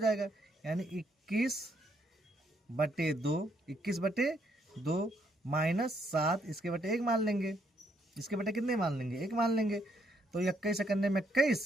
यानी 21/2, 21/2 -7 इसके बटे 1 मान लेंगे, इसके बटे कितने मान लेंगे 1 मान लेंगे, तो 21 करने में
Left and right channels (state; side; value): normal; both; correlation 0.73